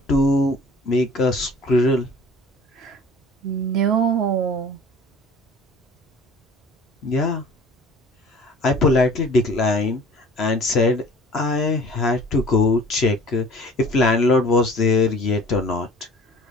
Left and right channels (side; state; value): both; normal; correlation 0.47